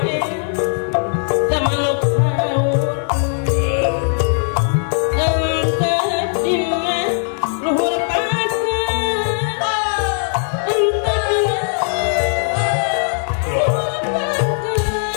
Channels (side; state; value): right; silent; digital silence